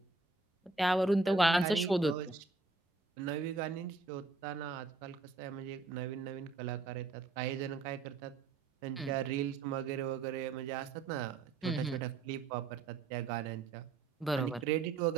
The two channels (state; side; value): quieter; left; 3.9 dB